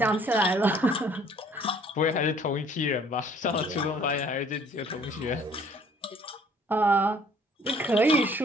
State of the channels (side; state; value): both; normal; correlation 0.57